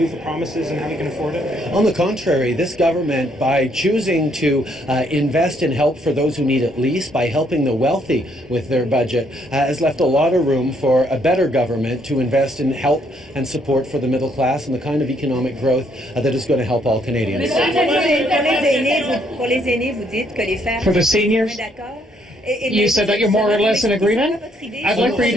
for promises and how you can afford it? On the contrary, this government, by choosing to invest in help for those who need it least, by helping the wealthy with their budget, has left a lot of room for a better government to invest in help and support for the middle class and the kind of economic growth that is going to help all Canadians. For the seniors, you said that you're more or less in agreement? I'd like for you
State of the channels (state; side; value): normal; both; correlation 0.70